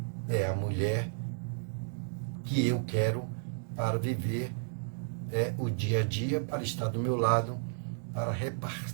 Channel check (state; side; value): silent; left; digital silence